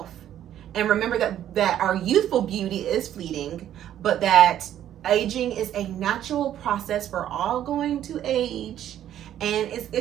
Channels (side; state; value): left; quieter; 11.2 dB